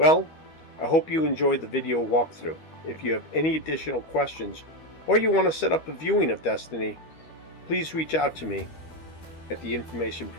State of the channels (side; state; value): right; late; 13 ms